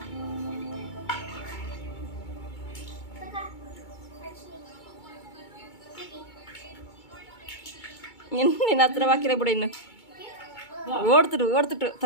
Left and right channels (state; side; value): late; right; 2.2 ms